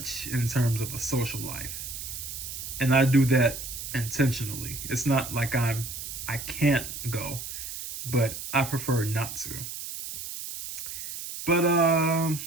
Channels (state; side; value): noise; right; hiss, 8 dB below the sound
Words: in terms of a social life. And I do that intentionally. It's not like I can't go, but I prefer not to. But